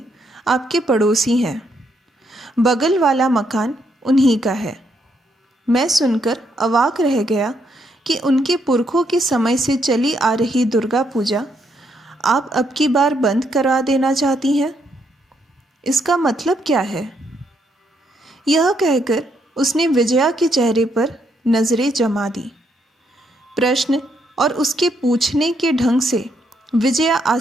आपके पड़ोसी हैं, बगल वाला मकान उन्हीं का है। मैं सुनकर अवाक रह गया कि उनके पुरखों के समय से चली आ रही दुर्गा पूजा आप अब की बार बंद करा देना चाहती हैं। इसका मतलब क्या है? यह कहकर उसने विजया के चेहरे पर नजरें जमा दी। प्रश्न और उसके पूछने के ढंग से विजया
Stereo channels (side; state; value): both; normal; correlation 0.75